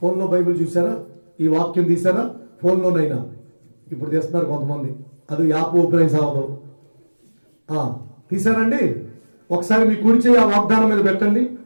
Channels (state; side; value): inverted; both; correlation -1.00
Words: ఫోన్లో బైబిల్ చూసారా? ఈ వాక్యం తీసారా? ఫోన్లోనైనా ఇప్పుడు తీస్తున్నారు కొంతమంది. అది యాప్ ఓపెన్ అయి సావదు. తీసారండి? ఒకసారి మీ కుడి చేయి ఆ వాగ్దానం మీద పెట్టండి.